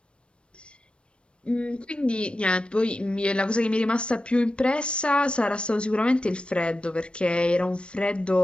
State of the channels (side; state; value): right; late; 0.058 ms